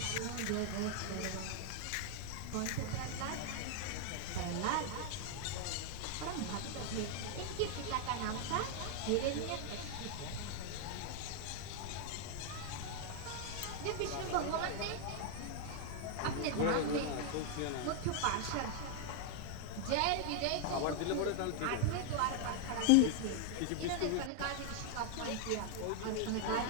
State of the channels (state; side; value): different; both; correlation 0.00